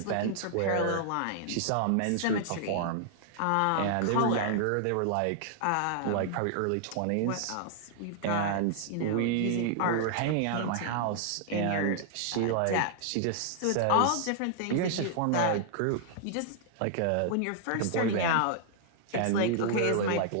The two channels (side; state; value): both; different; correlation 0.00